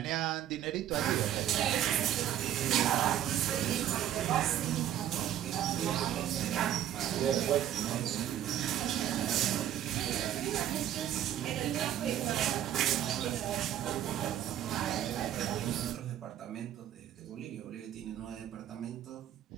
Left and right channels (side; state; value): left; quieter; 11.3 dB